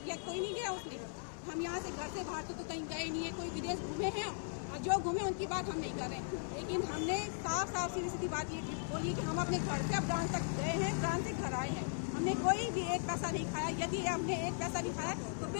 कोई नहीं गया उसमें। हम यहाँ से घर से बाहर तो कहीं गए नहीं है, कोई विदेश घूमे हैं और जो घूमे उनकी बात हम नहीं कर रहे हैं। लेकिन हमने साफ सीधी बात ये बोली कि हम अपने घर से अब ब्रांच तक गए हैं, ब्रांच से घर आए हैं। हमने कोई भी एक पैसा नहीं खाया। यदि हमने एक पैसा नहीं खाया तो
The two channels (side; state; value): right; silent; 52 dB below the other